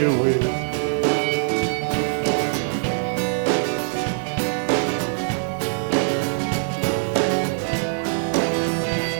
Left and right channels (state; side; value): silent; left; 59 dB below the other